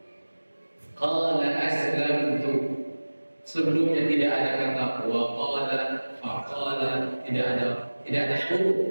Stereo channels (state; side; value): inverted; both; correlation -1.00